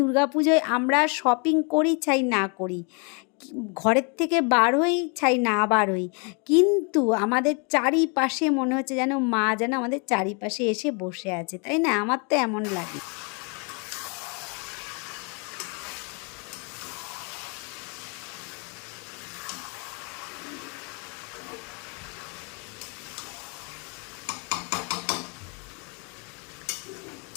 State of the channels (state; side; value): quieter; right; 35.1 dB